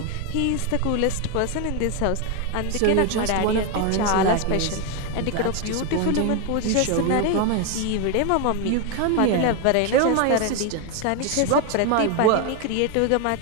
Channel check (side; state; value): both; different; correlation 0.01